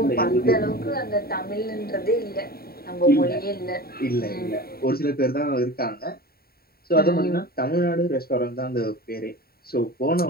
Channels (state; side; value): late; right; 0.44 ms